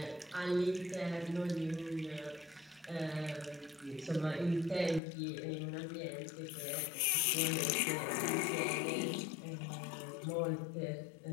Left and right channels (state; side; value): drops out; right; at 5.0 s